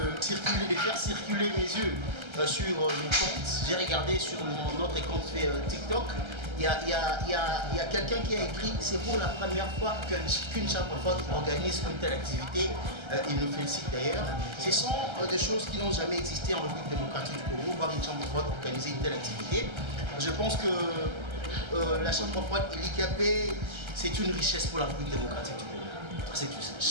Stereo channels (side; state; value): left; late; 1.3 ms